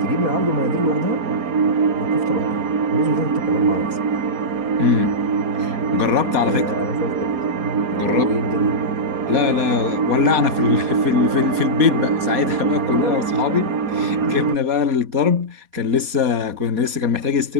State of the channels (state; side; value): late; left; 4.2 ms